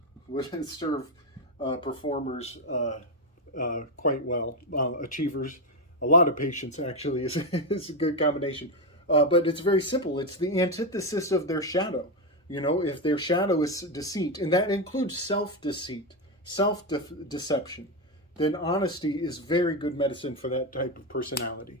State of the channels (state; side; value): normal; both; correlation 0.09